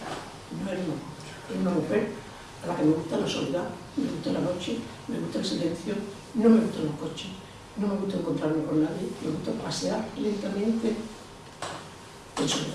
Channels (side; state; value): both; identical; correlation 1.00